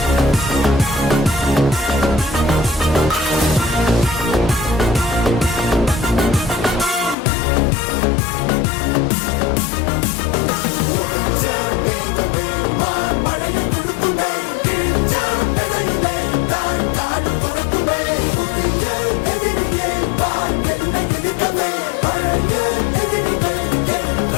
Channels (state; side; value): drops out; right; at 7.2 s